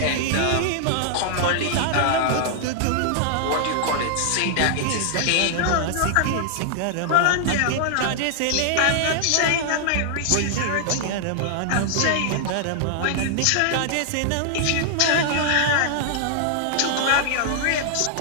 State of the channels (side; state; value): both; different; correlation -0.01